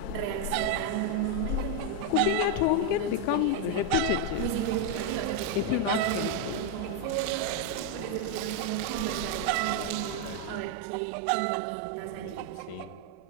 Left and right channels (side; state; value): both; different; correlation 0.01